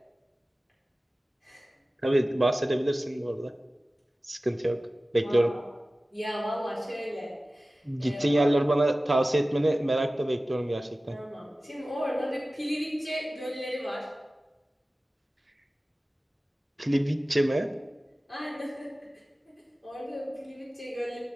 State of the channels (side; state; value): both; normal; correlation 0.97